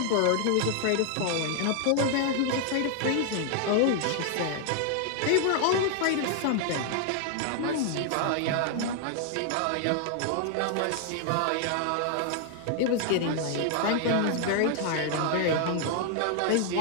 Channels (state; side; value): different; both; correlation 0.00